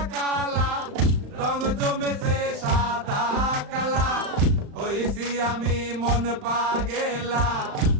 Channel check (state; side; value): late; left; 35 ms